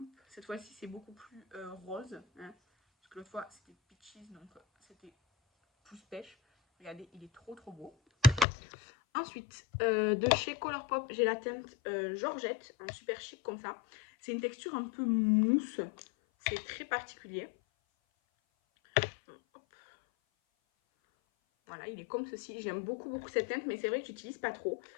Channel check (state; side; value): drops out; right; at 8.5 s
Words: cette fois-ci, c'est beaucoup plus rose. Hein. Parce que l'autre fois, c'était peaches, donc c'était plus pêche. Regardez, il est trop beau. Ensuite, de chez Colourpop, j'ai la teinte Georgette, en super chic comme ça. C'est une texture un peu mousse. C'est très particulier. Hop. Voilà, il est comme ceci. J'aime beaucoup cette teinte, mais c'est vrai que j'utilise pas trop.